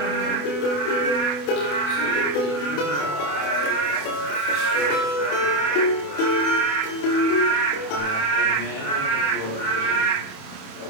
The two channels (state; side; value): late; right; 28 ms